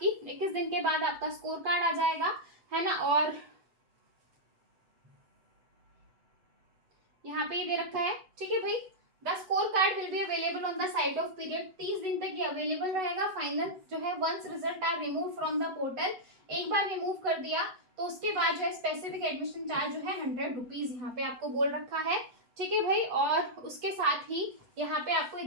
21 दिन के बाद आपका स्कोर कार्ड आ जाएगा, है ना। और यहाँ पे ये दे रखा है। ठीक है भाई, the score card will be available on the site of period, 30 दिन तक ये अवेलेबल रहेगा। फाइनल जो है once result are remove from the portal, एक बार रिमूव कर दिया तो उसके बाद जो है स्पेसिफिक एडमिशन चार्ज जो है 100 रुपीज यहाँ पे आपको बोल रखा है। ठीक है भाई, और उसके साथ ही यहाँ पे आपको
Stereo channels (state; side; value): late; left; 8.0 ms